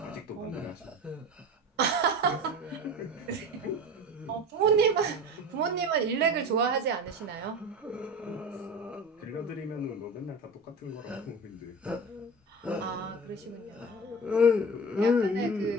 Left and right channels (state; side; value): normal; both; correlation 0.32